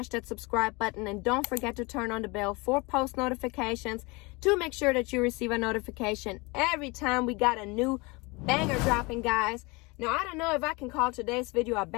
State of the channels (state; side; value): quieter; right; 26.1 dB